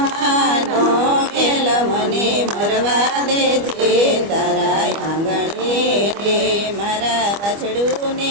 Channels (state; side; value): late; left; 25 ms